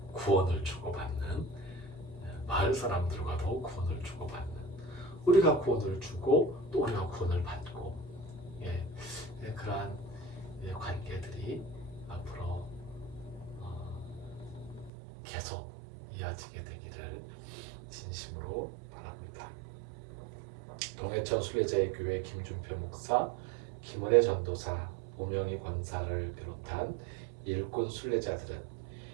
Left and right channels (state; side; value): drops out; left; at 14.9 s